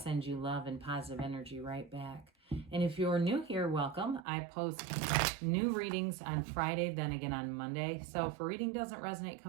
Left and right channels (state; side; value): drops out; left; at 4.2 s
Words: you love and positive energy right back. And if you're new here, welcome. I post new readings on Friday, then again on Monday. So if a reading doesn't resonate,